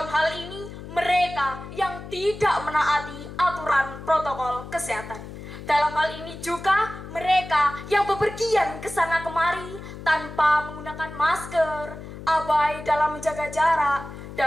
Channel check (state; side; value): noise; left; hum, 12 dB below the sound